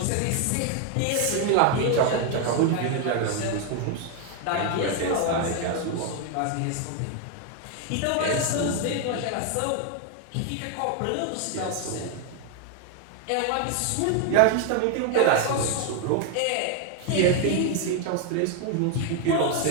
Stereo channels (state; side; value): different; both; correlation 0.01